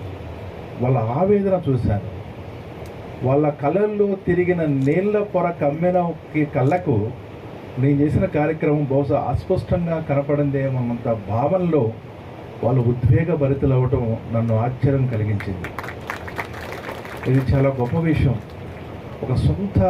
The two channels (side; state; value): both; identical; correlation 1.00